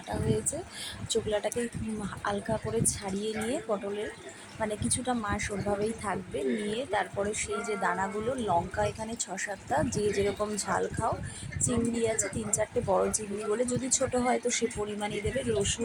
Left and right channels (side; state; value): both; identical; correlation 1.00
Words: হয়েছে। চোকলাটাকে হালকা করে ছাড়িয়ে নিয়ে পটলের মানে কিছুটা মাস ওরভাবেই থাকবে, নিয়ে তারপরে সেই যে দানাগুলো, লঙ্কা এখানে 6-7টা, যে যেরকম ঝাল খাও, চিংড়ি আছে 3-4টে বড় চিংড়ি বলে, যদি ছোট হয় তো সে পরিমাণেই দেবে,